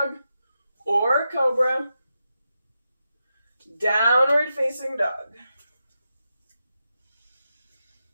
or cobra. Downward facing dog.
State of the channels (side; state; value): both; inverted; correlation -0.88